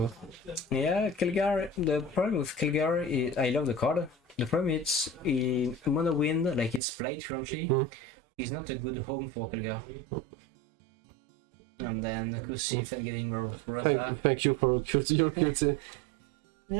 Yeah, Kelgar. The problem with Kelgar is I love the card. The problem is in Mono Wind, like it's played currently, is not a good home for Kelgar. And then Kusif and getting Rosa. Thank you for your QT.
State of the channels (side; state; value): left; drops out; at 6.8 s